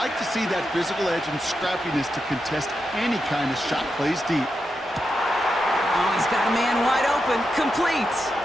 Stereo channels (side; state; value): both; normal; correlation 0.87